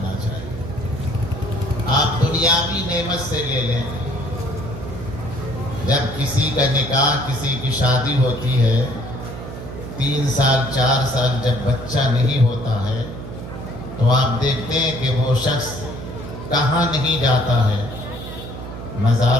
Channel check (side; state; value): right; noise; hum, 10 dB below the sound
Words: چاہیے۔ آپ دنیاوی نعمت سے لے لیں، جب کسی کا نکاح، کسی کی شادی ہوتی ہے، 3 سال 4 سال جب بچہ نہیں ہوتا ہے تو آپ دیکھتے ہیں کہ وہ شخص کہاں نہیں جاتا ہے،